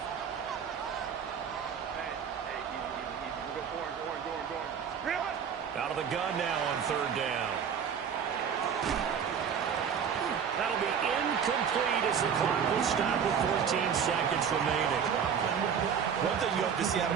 Out of the gun now on 3rd down. That'll be incomplete as the clock will stop with 14 seconds remaining. One thing you have to see out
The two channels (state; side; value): quieter; left; 7.4 dB